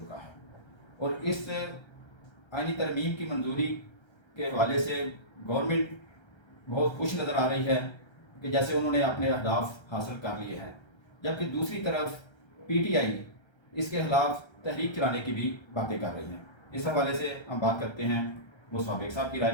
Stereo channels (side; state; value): right; late; 1.3 ms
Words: है और इस आईनी तरमीम की मंजूरी के हवाले से गवर्नमेंट बहुत खुश नज़र आ रही है कि जैसे उन्होंने अपने अहदाफ हासिल कर लिए हैं, जबकि दूसरी तरफ PTI इसके खिलाफ तहरीक चलाने की भी बातें कर रही हैं। इस हवाले से हम बात करते हैं, मुस्तफ़ा बेग साहब की राय